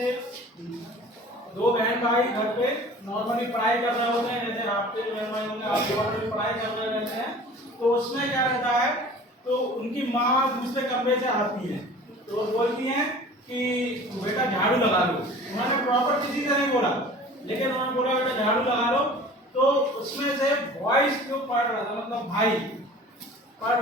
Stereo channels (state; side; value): normal; both; correlation 0.43